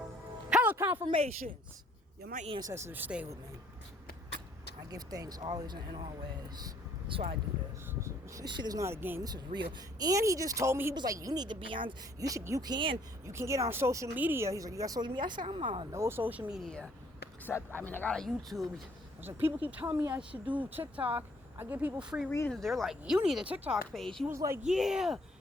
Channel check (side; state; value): both; normal; correlation 0.62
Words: confirmations. Yo, my ancestors stay with me. I give thanks always and always. That's why I do this. This shit is not a game. This is real. And he just told me, he was like, you need to be on, you can get on social media. He's like, you got social media? I said, I'm on no social media. Except, I got a YouTube. I was like, people keep telling me I should do TikTok. I give people free readings. They're like, you need a TikTok page. He was like, yeah.